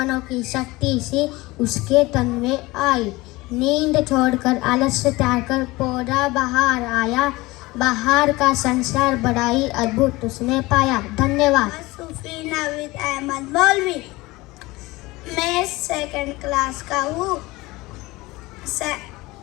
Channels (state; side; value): quieter; right; 21.0 dB